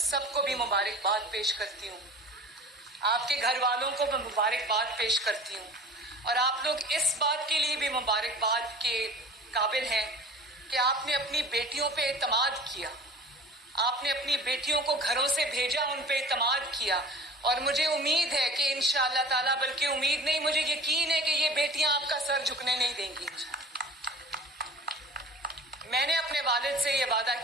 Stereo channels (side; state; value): both; normal; correlation 0.41